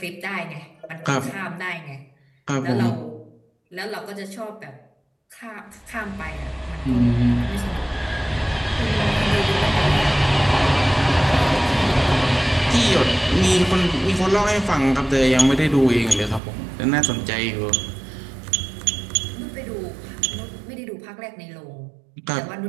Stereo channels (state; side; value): drops out; left; at 16.4 s